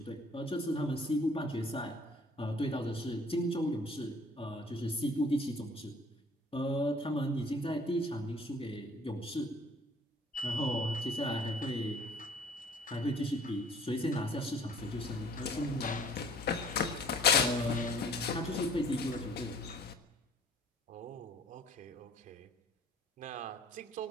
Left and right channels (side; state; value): both; normal; correlation 0.54